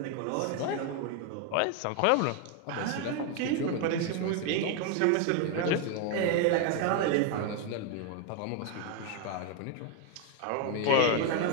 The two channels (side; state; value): both; different; correlation 0.01